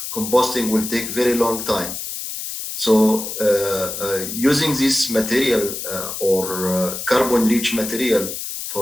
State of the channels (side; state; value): left; noise; hiss, 6 dB below the sound